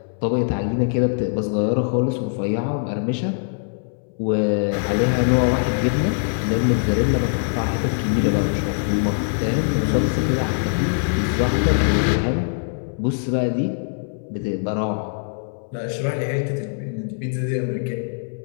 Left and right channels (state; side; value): silent; right; 62 dB below the other